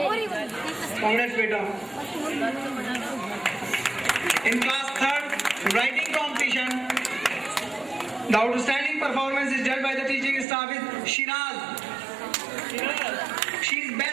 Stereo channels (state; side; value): drops out; left; at 10.5 s